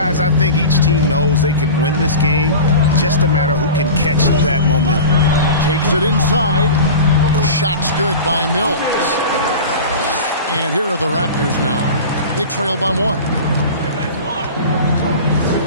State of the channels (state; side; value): inverted; both; correlation -0.33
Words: I think each team knows they can win this game. Just a matter who can catch that momentum. Takes it inside. Shot's good by Mills. And here are the Raptors now. They trail by 1.